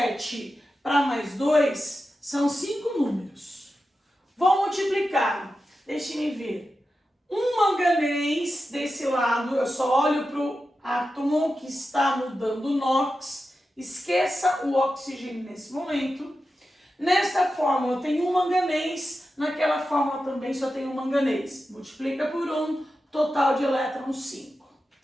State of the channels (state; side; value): normal; both; correlation 0.91